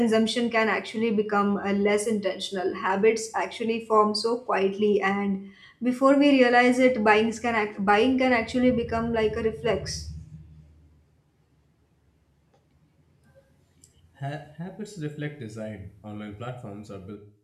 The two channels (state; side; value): identical; both; correlation 1.00